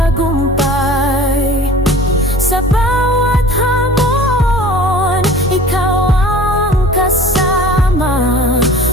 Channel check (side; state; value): both; normal; correlation 0.44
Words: Sa bawat hamon, ikaw ang kasama.